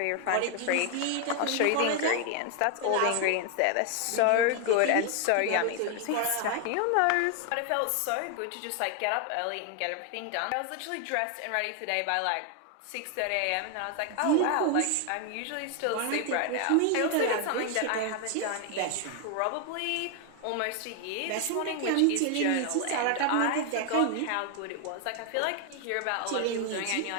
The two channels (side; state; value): both; different; correlation 0.00